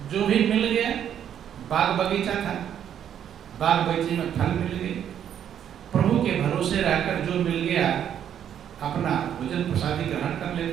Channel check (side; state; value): left; quieter; 9.5 dB